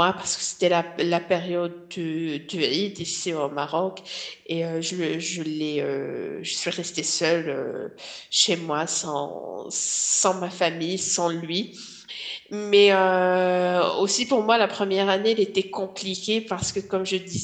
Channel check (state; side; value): identical; both; correlation 1.00